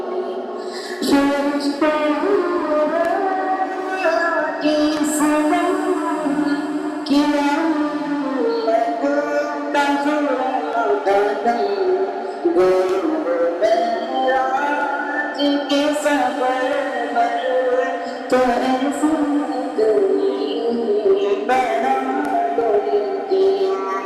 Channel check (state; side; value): identical; both; correlation 1.00